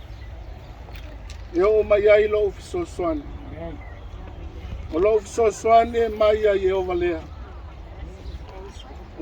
E o mai ai lo fisosoani. O lo fisosoani e mai ai e o valea.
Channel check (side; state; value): both; identical; correlation 1.00